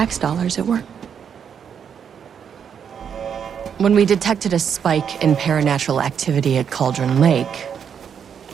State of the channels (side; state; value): left; quieter; 7.6 dB